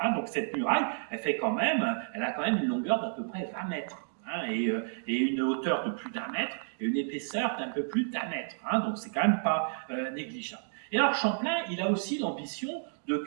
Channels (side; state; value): left; silent; digital silence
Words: Hein. Donc cette muraille, elle a quand même une longueur d'à peu près 20 mètres. Hein, et une hauteur de plus d'1 mètre et une épaisseur d'un peu plus d'1 mètre. Hein, donc c'est quand même pas négligeable. Et alors Champlain, il a aussi l'ambition de